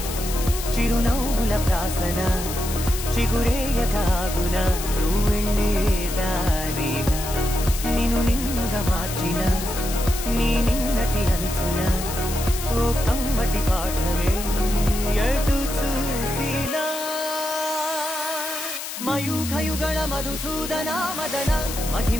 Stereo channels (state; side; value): noise; left; hiss, 7 dB below the sound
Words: చిరునవ్వుల ప్రాసన చిగురేయకాగున నువ్వెళ్ళేదానేనా నిన్ను నిన్నుగా మార్చిన నీ నిన్నటి అంచున ఓ కమ్మటి పాఠమే ఎటు చూసినా మయూఖయుగళ మధుసూదన మదన